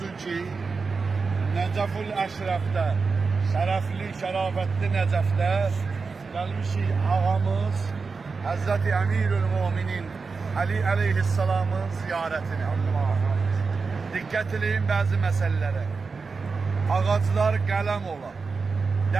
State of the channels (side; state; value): left; quieter; 4.7 dB